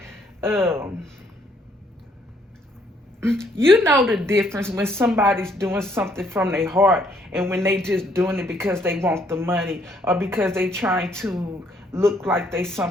you know the difference when somebody's doing something from their heart and when they just doing it because they want the money or because they trying to look like they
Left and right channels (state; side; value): normal; both; correlation 0.68